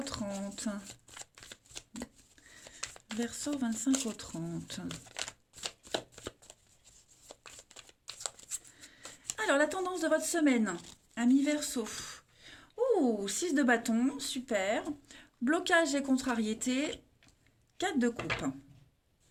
30. Verseau, 25 au 30. Alors, la tendance de votre semaine, amis Verseau. Ouh, 6 de bâton, super. Blocage et contrariété, 4 de coupe.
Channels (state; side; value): identical; both; correlation 1.00